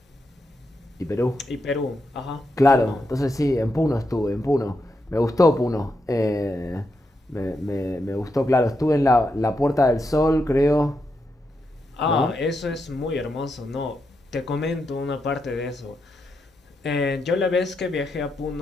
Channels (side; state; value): both; normal; correlation 0.84